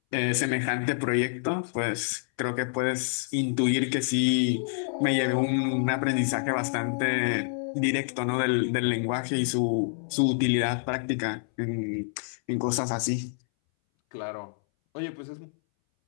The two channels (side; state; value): right; silent; 60 dB below the other